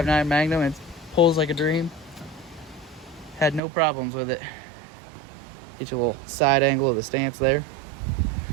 Magnum. It pulls like a dream. Had no problems with it. Get you a little side angle of the stance there.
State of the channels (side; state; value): left; drops out; at 3.6 s